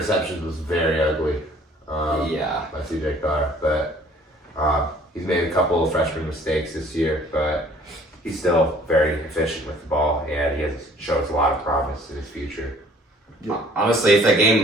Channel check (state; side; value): normal; both; correlation 0.55